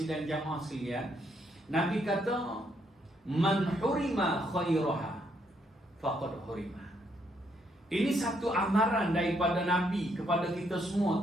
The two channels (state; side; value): normal; both; correlation 0.74